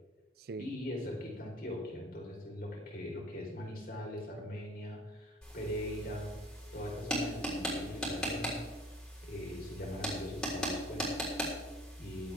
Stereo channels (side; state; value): both; normal; correlation 0.50